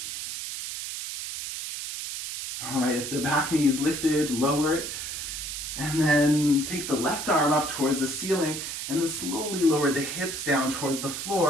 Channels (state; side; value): noise; right; hiss, 6 dB below the sound